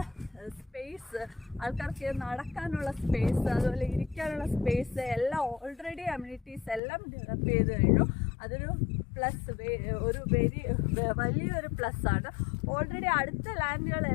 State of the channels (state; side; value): drops out; right; at 6.8 s